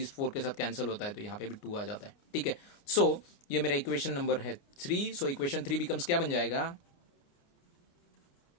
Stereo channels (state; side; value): late; right; 29 ms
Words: 4 के साथ कैंसिल होता है तो यहाँ पे भी 2 आ जाता है। ठीक है, सो ये मेरा इक्वेशन नंबर है 3। सो इक्वेशन 3 बिकम्स क्या बन जाएगा,